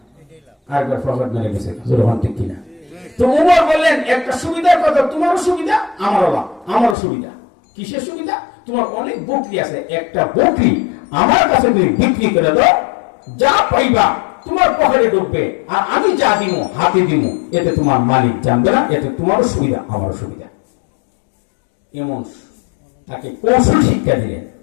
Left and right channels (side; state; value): right; drops out; at 7.0 s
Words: আরেকবার প্রফিট মেরে গেছে। ঠিক কিনা? তো উমর বললেন একটা সুবিধার কথা, তোমারও সুবিধা আমারও লাভ। আমারও সুবিধা, কিসের সুবিধা? তোমার অনেক বকরি আছে, একটা বকরি আমার কাছে তুমি বিক্রি করে দাও, যা পাইবা তোমার পকেটে ঢুকবে, আর আমি যা দিব হাতে দিব, এতে তোমার মালিক জানবে না, এতে তোমারও সুবিধা আমারও সুবিধা। এমন তাকে কৌশল শিক্ষা দিলেন।